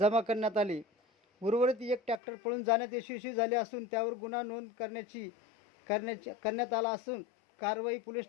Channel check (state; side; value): drops out; right; at 2.2 s